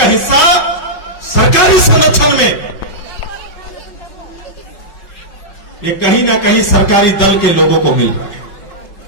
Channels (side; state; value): right; late; 5.4 ms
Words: हिस्सा सरकारी संरक्षण में ये कहीं ना कहीं सरकारी दल के लोगों को मिल रहा है